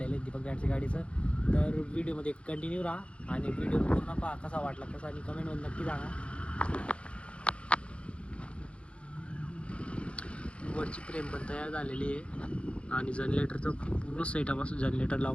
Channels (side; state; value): right; late; 0.060 ms